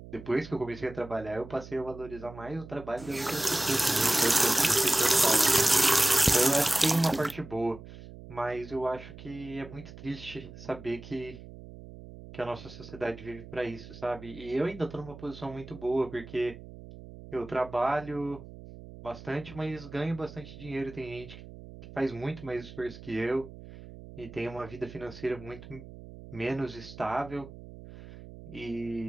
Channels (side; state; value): right; noise; hum, 15 dB below the sound